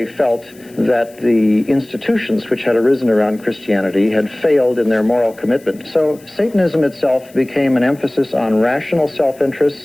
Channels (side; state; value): left; noise; hiss, 26 dB below the sound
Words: felt that the institutions which had arisen around Christianity had failed in their moral commitment. So Satanism itself became an emphasis on rational